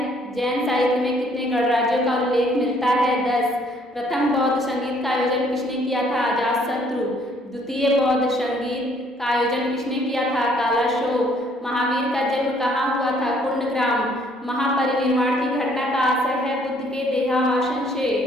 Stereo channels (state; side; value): normal; both; correlation 0.63